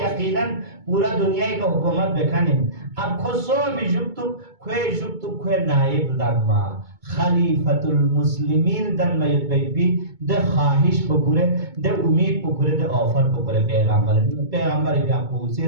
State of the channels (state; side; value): late; left; 2.2 ms